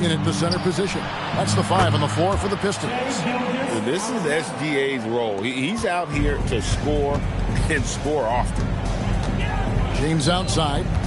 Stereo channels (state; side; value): identical; both; correlation 1.00